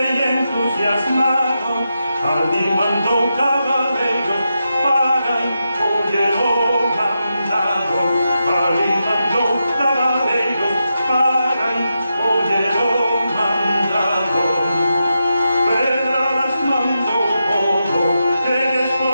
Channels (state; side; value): inverted; both; correlation -0.87